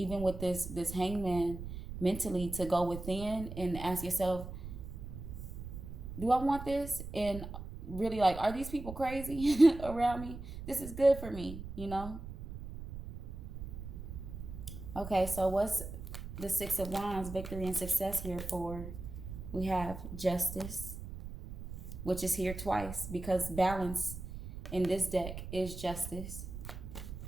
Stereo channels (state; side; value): noise; right; rumble, 9 dB below the sound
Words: with this hangman mentally, to go within and ask yourself, do I want this? And really, like, are these people crazy around me? This is good for me, you know? Okay, so what's the 6 of Wands, victory and success here for? We have justice, which is here twice because balance in this deck is justice.